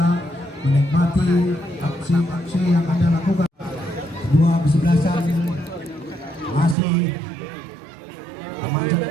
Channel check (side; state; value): left; drops out; at 6.8 s